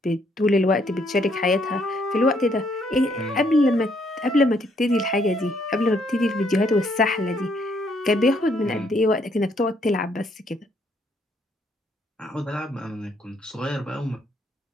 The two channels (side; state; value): both; normal; correlation 0.70